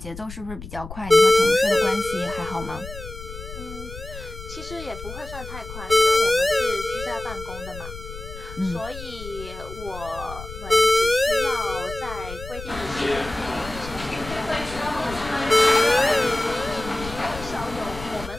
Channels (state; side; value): noise; left; rumble, 12 dB below the sound